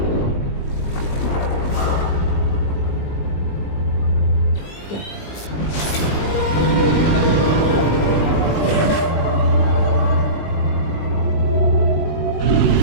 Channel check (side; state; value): right; late; 20 ms